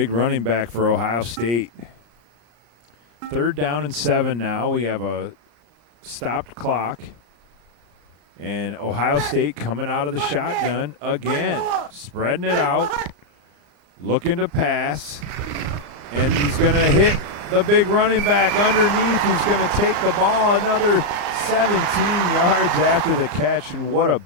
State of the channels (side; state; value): left; late; 34 ms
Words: running back for Ohio State. 3rd down and 7 now. We have a stopped clock. And Ohio State coming out of the shotgun again, spreading it out, looking to pass. And he's going to hit the big running back underneath who's going to take the ball another 17 yards after the catch. And what a